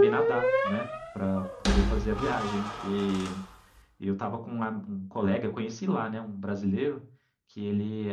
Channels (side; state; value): both; identical; correlation 1.00